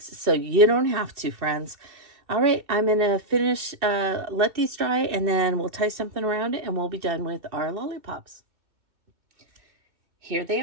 so you don't have to, friends. All right, I'm going to finish, let these dry, and then we'll tie something around it, and we'll be done with our lollipops. Here they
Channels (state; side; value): late; left; 2.7 ms